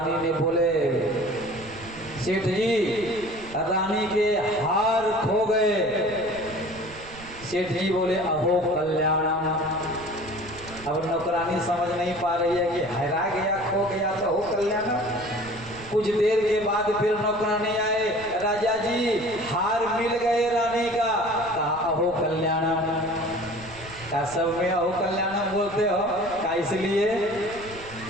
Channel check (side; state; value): right; noise; rumble, 18 dB below the sound